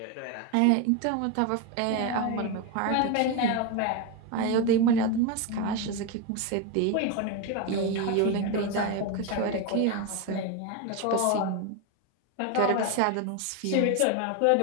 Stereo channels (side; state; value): both; different; correlation 0.03